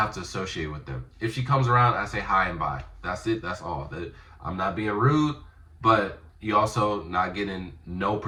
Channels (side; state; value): both; identical; correlation 1.00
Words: to associate with them. If she comes around, I say hi and bye. That's it. That's all. I'm not being rude, but you also not getting no